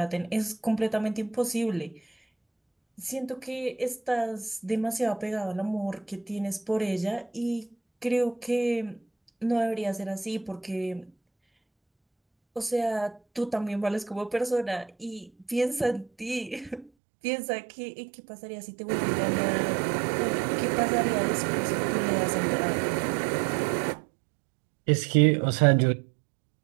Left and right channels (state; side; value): drops out; left; at 16.9 s